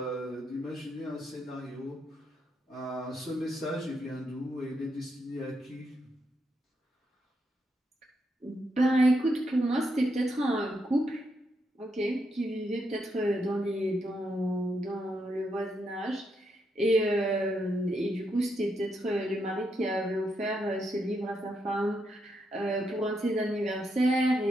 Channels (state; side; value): normal; both; correlation 0.81